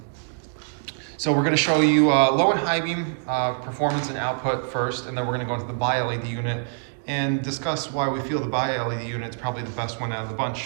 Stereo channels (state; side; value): silent; left; 62 dB below the other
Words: So we're going to show you low and high beam performance and output first, and then we're going to go into the bi-LED unit and discuss why we feel the bi-LED unit is probably the best one out of the bunch.